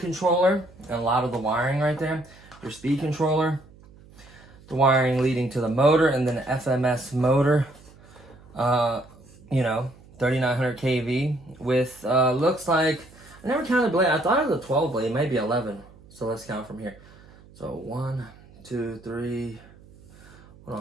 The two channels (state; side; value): noise; right; hum, 24 dB below the sound